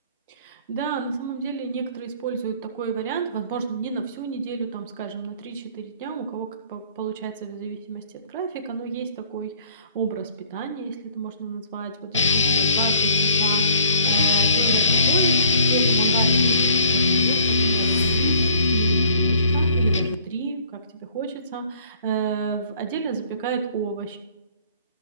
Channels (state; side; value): inverted; both; correlation -0.56